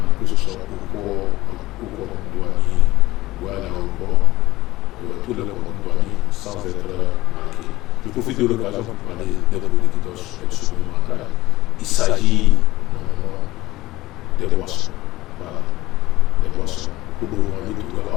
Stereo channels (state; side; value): quieter; right; 17.8 dB